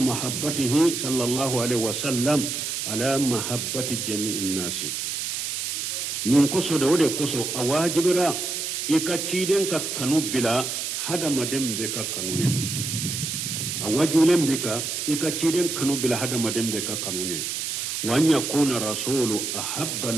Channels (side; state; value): right; noise; hiss, 3 dB below the sound